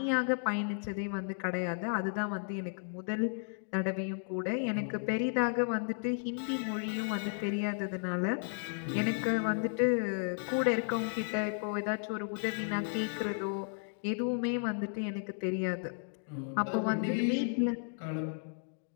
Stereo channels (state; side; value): silent; right; digital silence